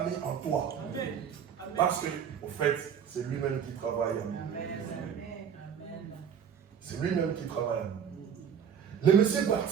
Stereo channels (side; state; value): left; quieter; 7.8 dB